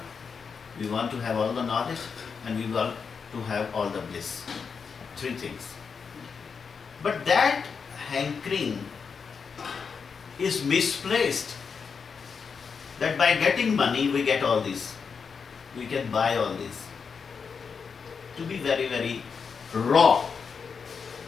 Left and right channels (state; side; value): quieter; right; 5.8 dB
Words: we want to have all the knowledge, and we want to have all the bliss. Three things. But that hankering is misplaced. That by getting money we get all this. We can buy all this. To be very, very raw,